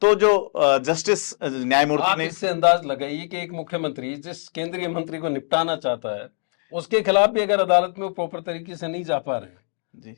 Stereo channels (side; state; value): right; silent; 57 dB below the other